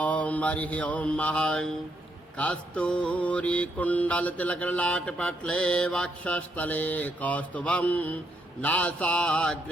हरिः ओम महं कस्तूरी कुण्डलतिलकलाटपटले वक्षस्थले कौस्तुभं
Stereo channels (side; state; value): both; normal; correlation 0.76